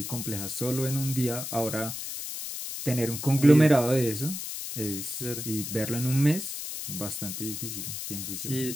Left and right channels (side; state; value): left; noise; hiss, 6 dB below the sound